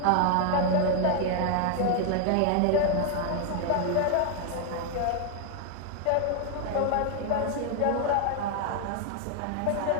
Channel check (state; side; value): different; both; correlation 0.00